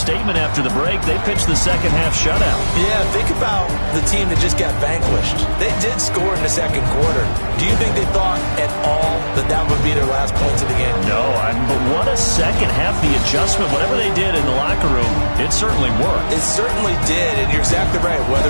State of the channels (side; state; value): both; inverted; correlation -1.00